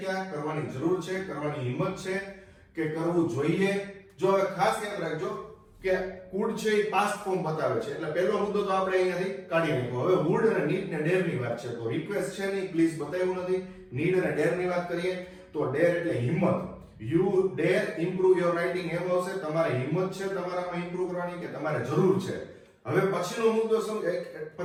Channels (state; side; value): identical; both; correlation 1.00